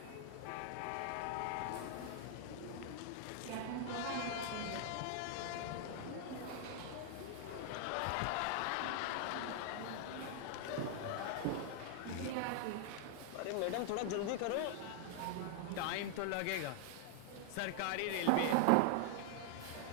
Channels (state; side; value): different; both; correlation 0.00